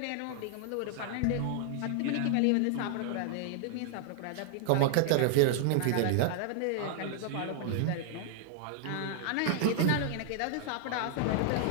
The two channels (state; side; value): different; both; correlation 0.00